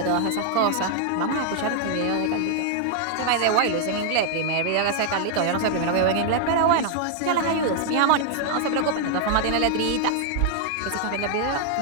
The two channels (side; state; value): both; different; correlation 0.00